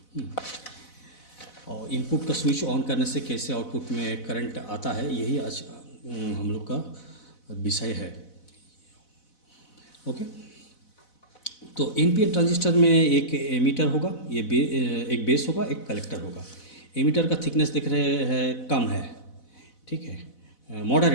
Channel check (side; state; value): right; late; 4.0 ms